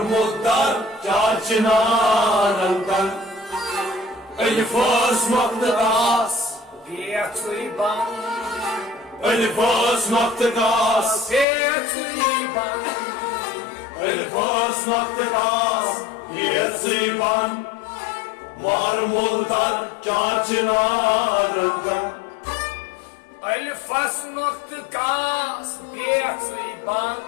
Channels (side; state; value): right; drops out; at 11.5 s